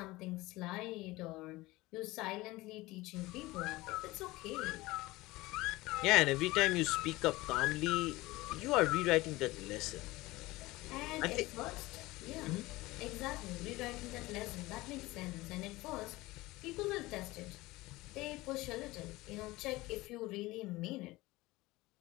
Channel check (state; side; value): quieter; right; 20.0 dB